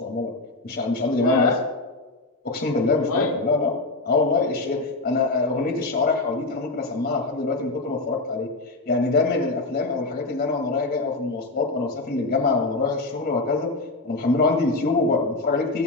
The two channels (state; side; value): quieter; right; 3.1 dB